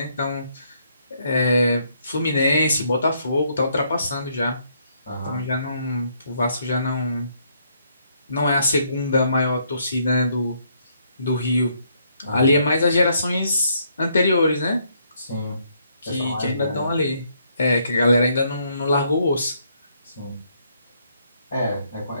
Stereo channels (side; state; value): both; inverted; correlation -0.71